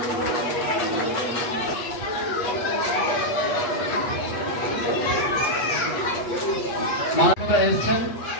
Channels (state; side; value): late; right; 8.2 ms